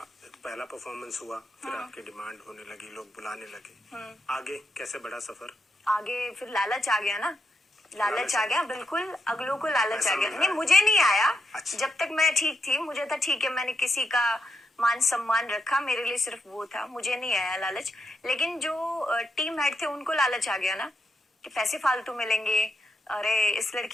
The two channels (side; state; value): both; normal; correlation 0.83